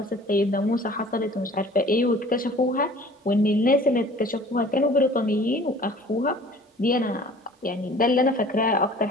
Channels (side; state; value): both; normal; correlation 0.48